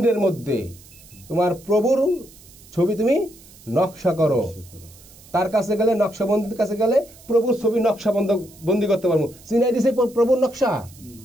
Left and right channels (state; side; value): noise; right; hiss, 23 dB below the sound